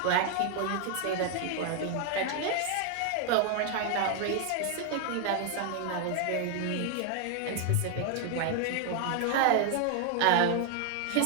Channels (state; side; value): different; both; correlation 0.00